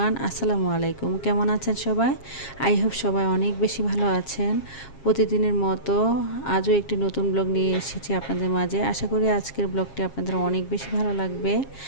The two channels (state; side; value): late; right; 7.4 ms